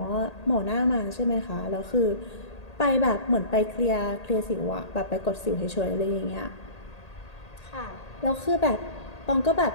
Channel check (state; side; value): late; right; 1.8 ms